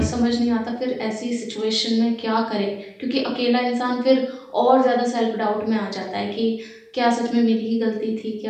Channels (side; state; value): both; identical; correlation 1.00